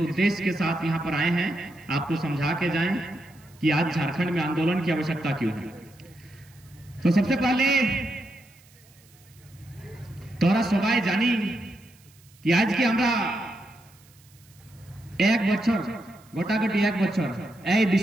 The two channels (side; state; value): right; noise; hiss, 28 dB below the sound